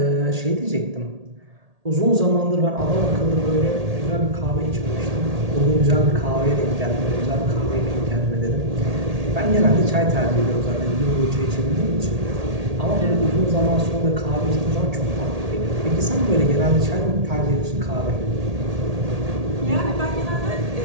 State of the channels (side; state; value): left; late; 1.8 ms